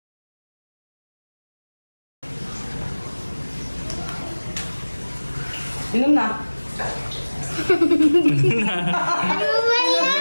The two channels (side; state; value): both; inverted; correlation -1.00